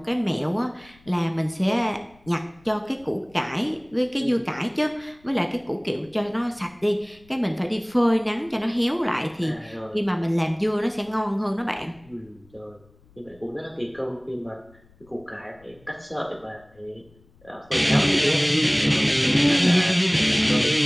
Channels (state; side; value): noise; left; rumble, 29 dB below the sound